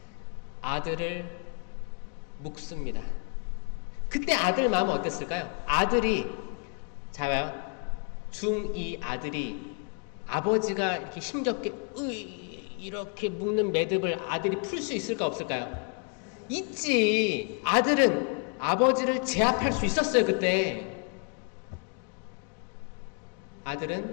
아들을 묵습니다. 그때 아들 마음은 어땠을까요? 아들이, 자요, 중2 아들이 아버지가 이렇게 힘겹게 이렇게 묶는 매듭을 아들이 풀 수 있을까 없을까요? 있지. 아들은 아버지를 제압할 수 있었어요. 그때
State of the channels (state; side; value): quieter; right; 39.9 dB